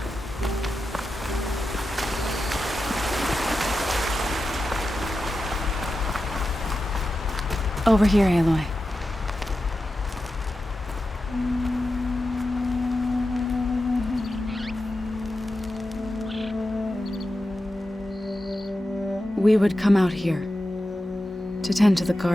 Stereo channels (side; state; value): both; normal; correlation 0.91